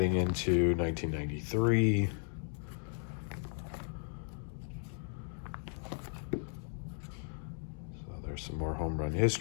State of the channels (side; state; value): right; silent; 54 dB below the other